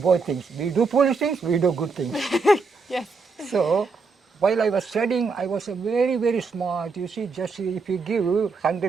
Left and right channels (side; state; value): left; quieter; 4.4 dB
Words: things. We do foolish things, we do good things. Yes. So while I was studying, I was a very smart. You see, just if you give